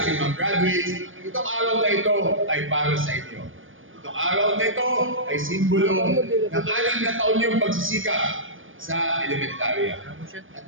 ating mga graduates, itong araw na ito ay para sa inyo. Itong araw na ito ay simbolo ng 6 na taon niyong pagsisikap sa elementarya. At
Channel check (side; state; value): left; late; 0.58 ms